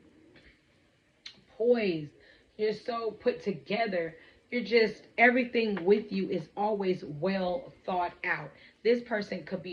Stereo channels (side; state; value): both; identical; correlation 1.00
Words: poised, you're so put together. You're just, everything with you is always well thought out. This person could